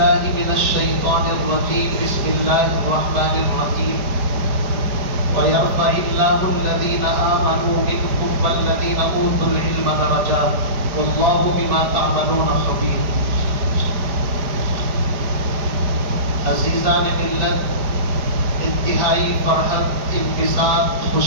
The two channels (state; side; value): late; left; 4.9 ms